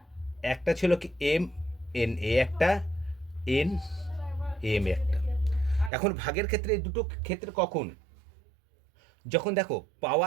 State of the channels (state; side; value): drops out; left; at 5.9 s